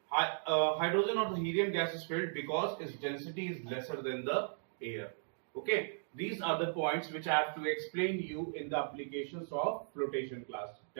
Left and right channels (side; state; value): left; silent; digital silence